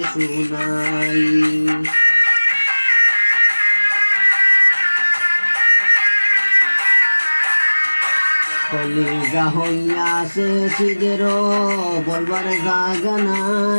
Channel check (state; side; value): inverted; both; correlation -1.00